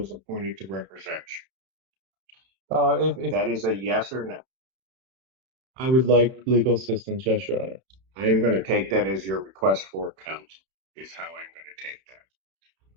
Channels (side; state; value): left; late; 31 ms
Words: appointed to represent you. If That is a yes or no. I would like legal assistance, yes, Your Honor. I'm going to take that as your request for counsel, is how I'm going to take that.